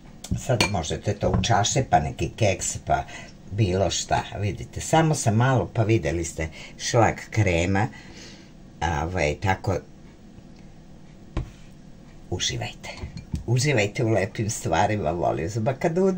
Sad možete to u čaše, pa neki keks, pa bilo šta. Vidite, samo sam malo, pa vidjeli ste šlag krema. Tako, uživajte. Uživajte u lepim stvarima, volim.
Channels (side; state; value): both; identical; correlation 1.00